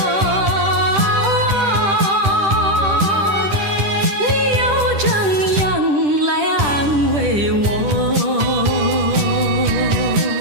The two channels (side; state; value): left; late; 10 ms